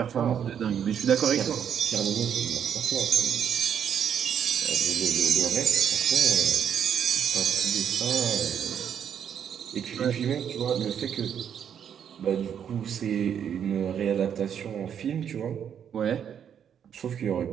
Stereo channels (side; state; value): left; quieter; 8.5 dB